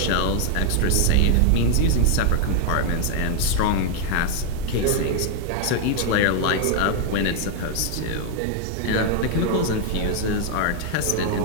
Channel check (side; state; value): both; different; correlation 0.00